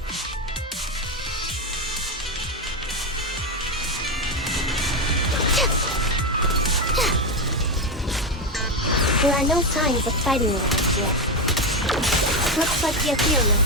There are no signs of fighting around here. Looks like the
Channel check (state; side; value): normal; both; correlation 0.11